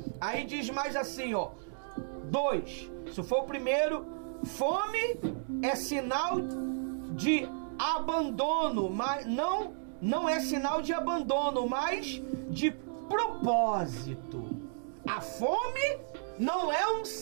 Aí diz mais assim, ó. 2. Se for o primeiro, fome é sinal de abandono, mas não é sinal de abandono, mas de propósito. A fome não é um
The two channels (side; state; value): left; silent; digital silence